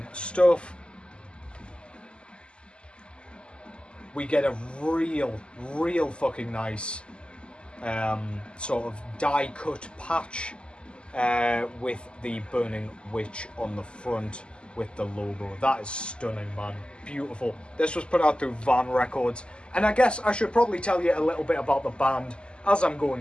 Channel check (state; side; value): late; right; 0.051 ms